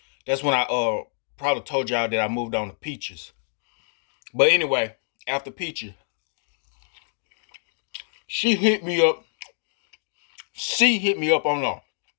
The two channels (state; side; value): silent; right; digital silence